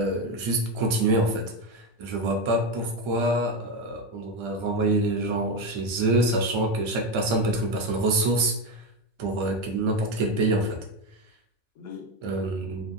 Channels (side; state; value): left; late; 1.3 ms